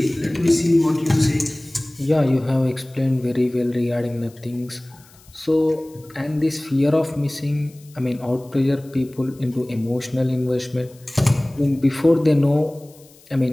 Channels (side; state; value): left; noise; hiss, 27 dB below the sound